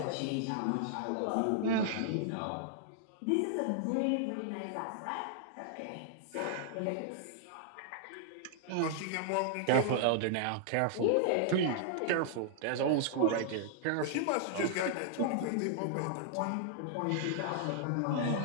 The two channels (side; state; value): both; different; correlation -0.01